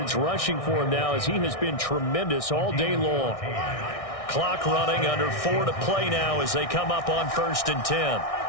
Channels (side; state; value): right; late; 1.6 ms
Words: rushing for him now as he has been tremendous all day long. Clock running, under 4 to play now as they come up on 1st and 10.